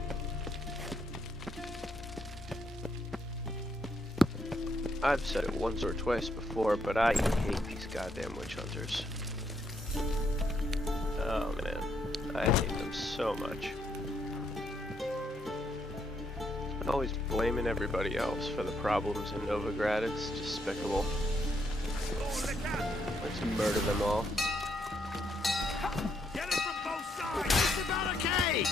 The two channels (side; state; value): both; normal; correlation 0.75